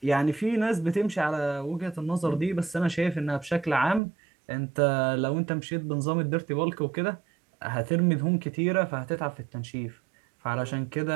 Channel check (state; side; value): drops out; left; at 4.0 s